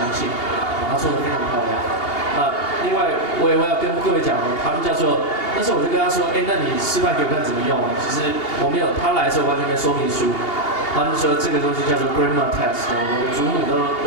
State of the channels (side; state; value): right; late; 2.8 ms